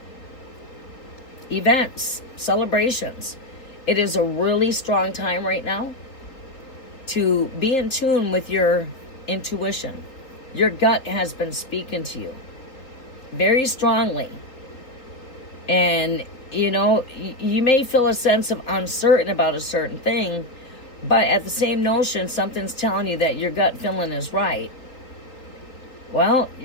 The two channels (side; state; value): right; late; 3.8 ms